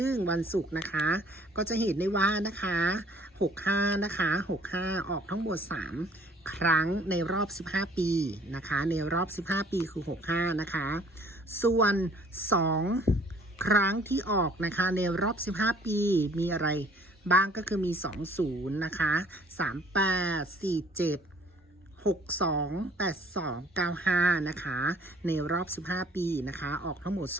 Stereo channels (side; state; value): both; normal; correlation 0.56